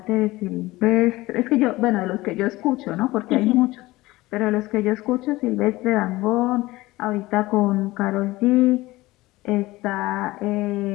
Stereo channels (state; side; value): quieter; right; 19.2 dB